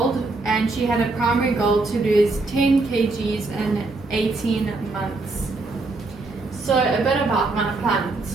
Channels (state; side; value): quieter; left; 3.4 dB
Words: and she had a primary goal to lose 10 kgs in 18 months. So a bit about my